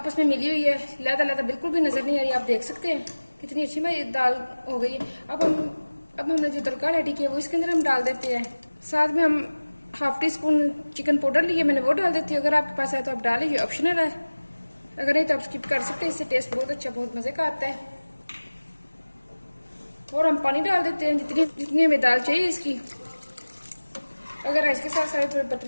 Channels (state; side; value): inverted; both; correlation -1.00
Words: में मिली हुई है, लहदा लहदा बिल्कुल भी नजर नहीं आ रही। आप देख सकते हैं कितनी अच्छी हमारी दाल हो गई है। अब हमने जो तड़का रेडी किया वो इसके अंदर हम डाल देते हैं। साथ में हम half tea spoon chicken powder लिए, मैंने वो डाल देती हूँ। अगर आपके पास है तो आप डालें, ये ऑप्शनल है, अगर नहीं तो आप स्किप कर सकते हैं। इससे टेस्ट बहुत अच्छा बहुत मजे का आता है। और हम पानी डाल देते हैं जितनी हमें दाल चाहिए इसकी। अगर राइस के साथ थोड़ी